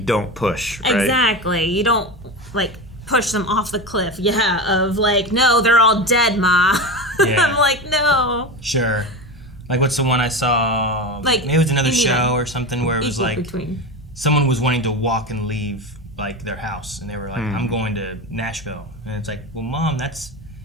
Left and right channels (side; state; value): both; normal; correlation 0.23